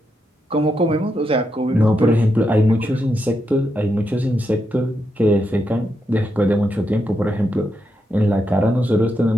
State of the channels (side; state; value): both; normal; correlation 0.83